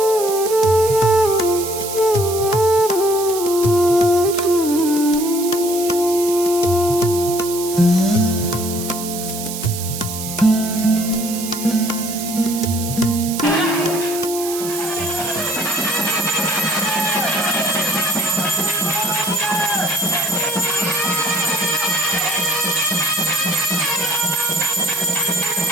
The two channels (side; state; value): right; noise; hiss, 8 dB below the sound